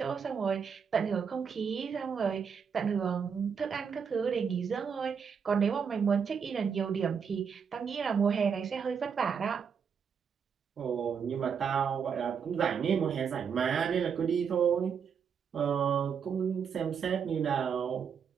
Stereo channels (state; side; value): quieter; left; 6.8 dB